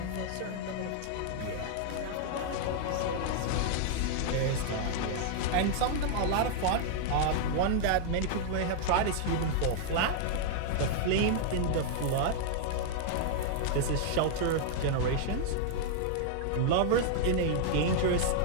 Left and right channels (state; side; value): different; both; correlation -0.01